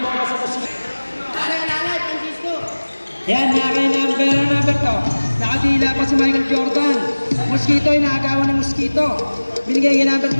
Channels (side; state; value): both; inverted; correlation -1.00